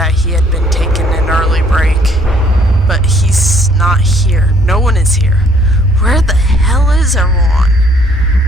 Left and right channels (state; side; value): normal; both; correlation 0.63